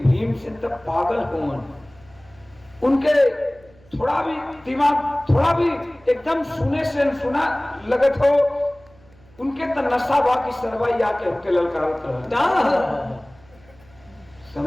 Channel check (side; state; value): right; noise; hum, 27 dB below the sound